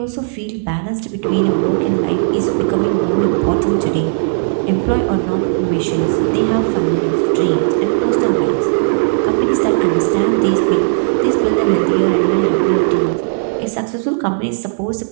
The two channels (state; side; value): silent; left; digital silence